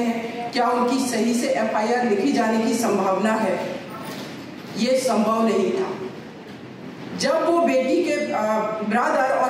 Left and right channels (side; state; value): both; identical; correlation 1.00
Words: क्या उनकी सही से एफआईआर लिखी जाने की संभावना है? ये संभव नहीं था। जब वो बेटी के ब्रदर